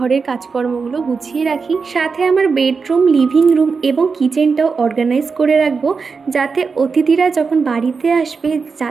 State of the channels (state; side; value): quieter; left; 5.0 dB